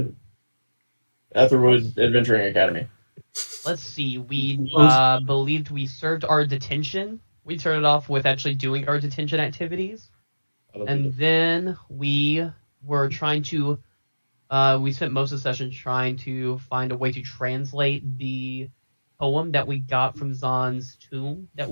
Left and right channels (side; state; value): both; inverted; correlation -1.00